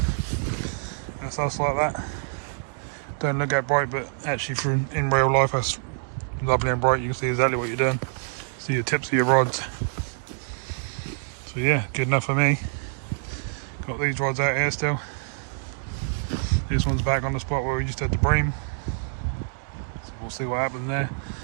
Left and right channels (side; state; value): left; silent; digital silence